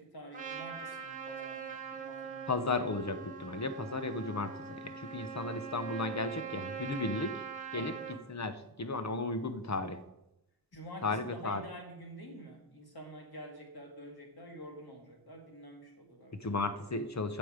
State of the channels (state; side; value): normal; both; correlation 0.03